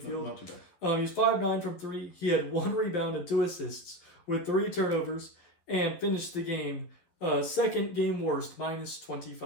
Not too bad. He was 5-9 from 3. He had 1 rebound and 2 assists with 3 turnovers and finished the game second game worst, minus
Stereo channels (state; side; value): late; right; 12 ms